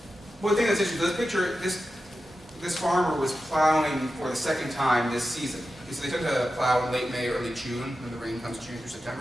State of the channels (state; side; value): normal; both; correlation 0.92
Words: One thing that's interesting, this picture, this farmer was plowing for the second time this season. So they tend to plow in late May, early June, when the rain comes June through